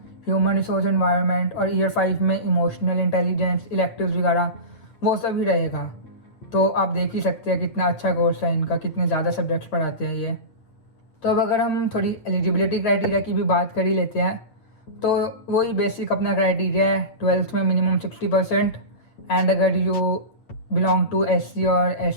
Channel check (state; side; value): late; right; 8.6 ms